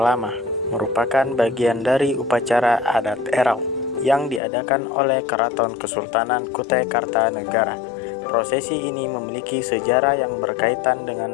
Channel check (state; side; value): drops out; right; at 4.4 s